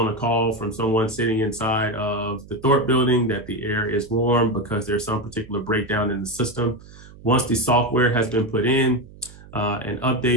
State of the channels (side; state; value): right; noise; hum, 20 dB below the sound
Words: a call from someone sitting inside of the Thorpe building that the air is warm because there's some particular breakdown in the system, once the software has been put in and